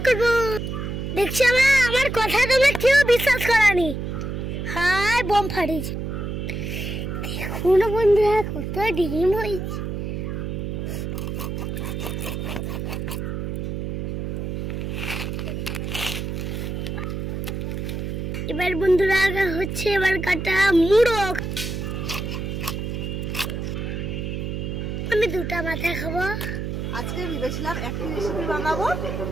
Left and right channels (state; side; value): noise; right; hum, 4 dB below the sound